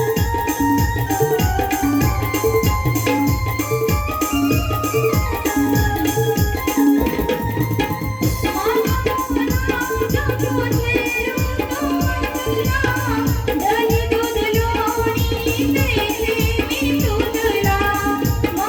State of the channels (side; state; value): both; identical; correlation 1.00